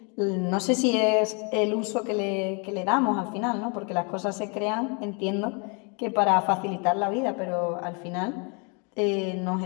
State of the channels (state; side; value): quieter; right; 35.0 dB